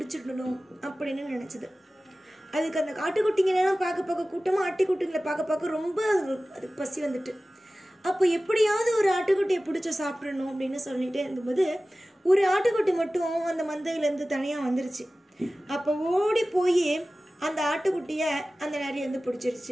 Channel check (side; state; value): both; normal; correlation 0.96